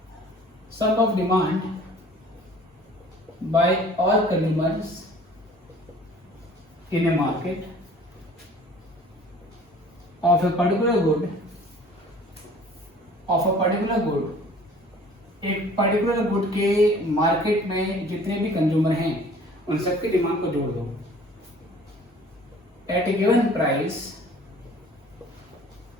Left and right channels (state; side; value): normal; both; correlation 0.50